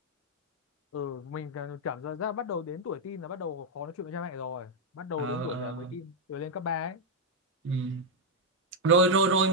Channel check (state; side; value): normal; both; correlation -0.01